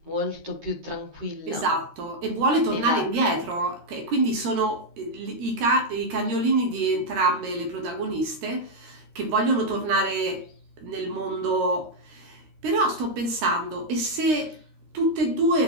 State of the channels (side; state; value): left; late; 13 ms